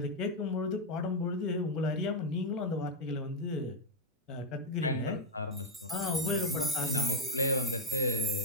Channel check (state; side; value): normal; both; correlation 0.01